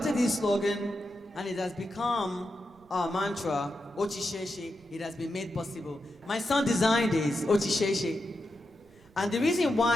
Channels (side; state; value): right; noise; rumble, 28 dB below the sound